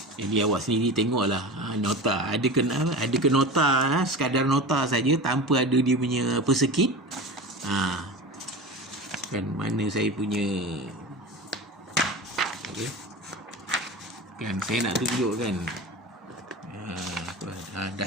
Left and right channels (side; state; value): both; normal; correlation 0.30